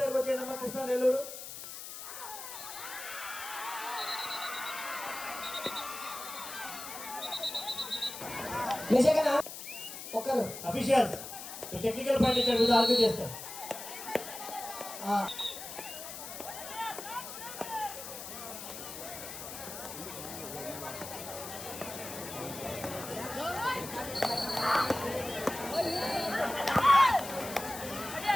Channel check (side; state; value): left; noise; hiss, 10 dB below the sound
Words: దగ్గరకు వచ్చేయండి. కృష్ణ నెల్లూరు. నిజంగా ఒక్కరు అఫీషియల్స్ టెక్నికల్ పాయింట్ ఇక్కడ ఆర్గ్యూ చేస్తారు.